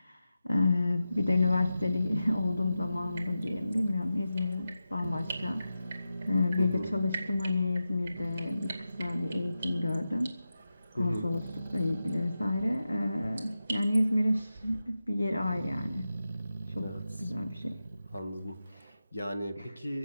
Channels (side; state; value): both; inverted; correlation -0.92